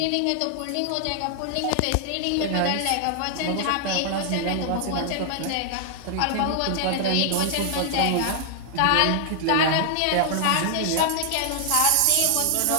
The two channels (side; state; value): both; different; correlation 0.00